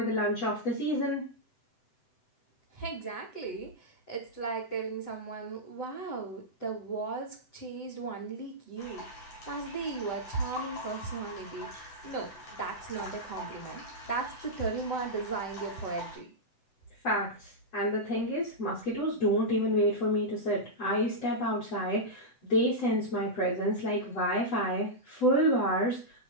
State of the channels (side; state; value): right; late; 7.9 ms